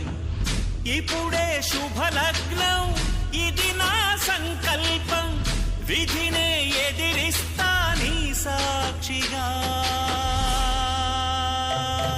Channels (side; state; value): both; identical; correlation 1.00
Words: ఇప్పుడే శుభలగ్నం, ఇది నా సంకల్పం, విధినే ఎదిరిస్తా నీ సాక్షిగా.